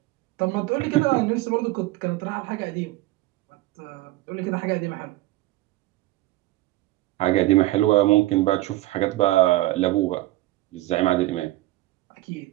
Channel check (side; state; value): left; quieter; 18.0 dB